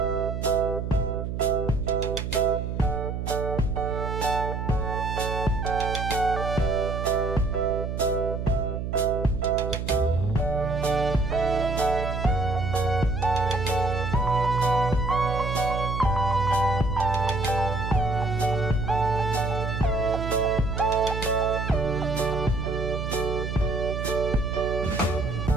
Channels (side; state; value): right; noise; hum, 4 dB below the sound